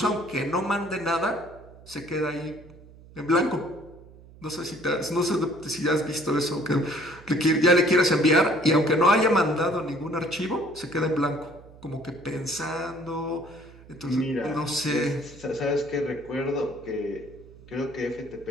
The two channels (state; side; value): noise; right; hum, 21 dB below the sound